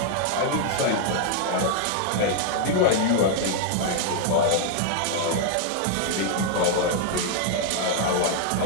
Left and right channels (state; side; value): different; both; correlation -0.01